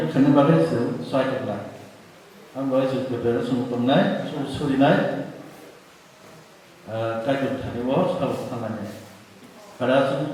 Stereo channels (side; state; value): both; identical; correlation 1.00